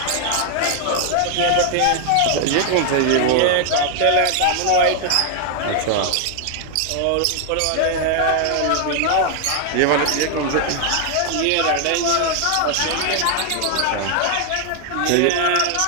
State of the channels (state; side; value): different; both; correlation 0.00